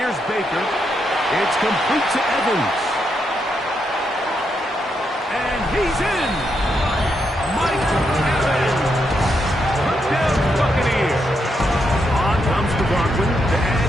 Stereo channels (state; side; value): normal; both; correlation 0.80